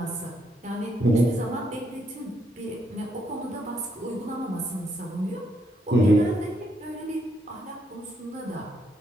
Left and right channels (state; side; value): normal; both; correlation 0.76